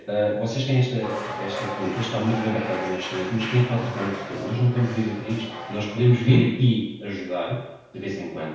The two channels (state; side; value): identical; both; correlation 1.00